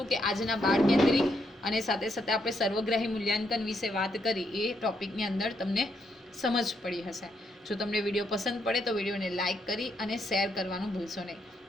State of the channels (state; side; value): normal; both; correlation 0.78